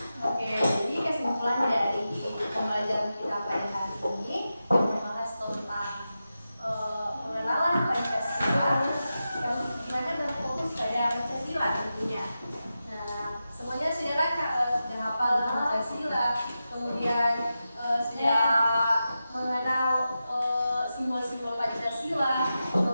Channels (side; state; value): both; inverted; correlation -0.91